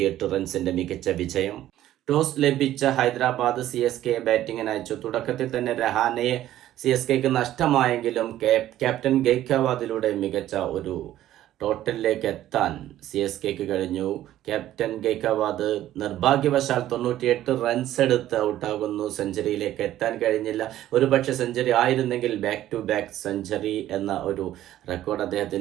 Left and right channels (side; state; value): left; quieter; 13.2 dB